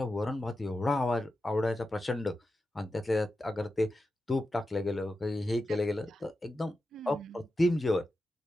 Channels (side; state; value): both; normal; correlation 0.90